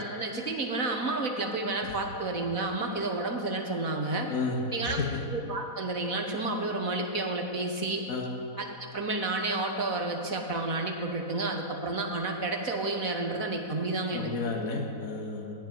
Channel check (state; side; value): late; right; 4.1 ms